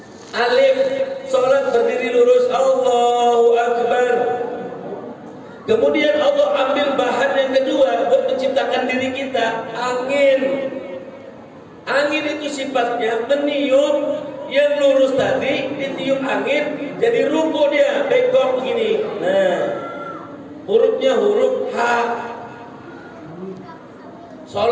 Alif, sholat berdiri lurus, Allahu Akbar. Kemudian Allah ambil bahan yang kedua buat menciptakan diri kita, angin. Angin itu sifatnya meniup, yang lurus tadi ditiup angin jadi ruku dia, bengkok begini. Nah, hurufnya huruf H.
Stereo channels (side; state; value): both; identical; correlation 1.00